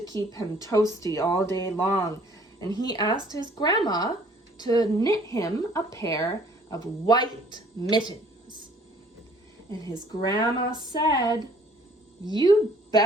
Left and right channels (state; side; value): normal; both; correlation 0.57